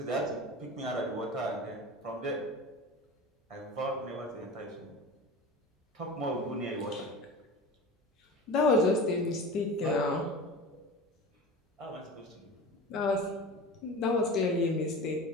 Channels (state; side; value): normal; both; correlation 0.33